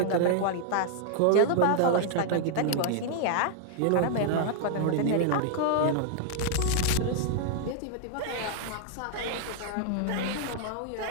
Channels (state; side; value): different; both; correlation -0.01